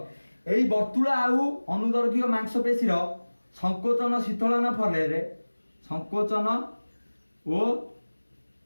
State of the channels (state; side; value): inverted; both; correlation -1.00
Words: एई वर्तुल आउ अनुदर्घिक मांसपेशी रो संकोचन शीतलन फले रे संकोचन ओ